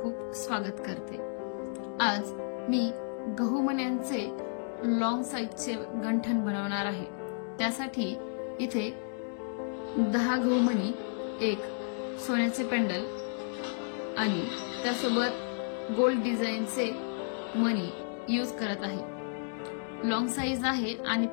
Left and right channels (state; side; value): silent; right; digital silence